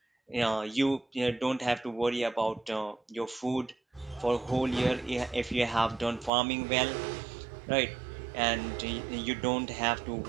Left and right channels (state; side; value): drops out; left; at 6.3 s